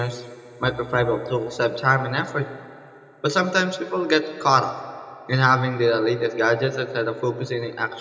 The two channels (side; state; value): both; identical; correlation 1.00